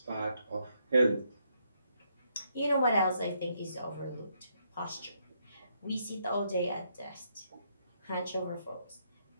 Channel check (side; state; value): both; inverted; correlation -0.75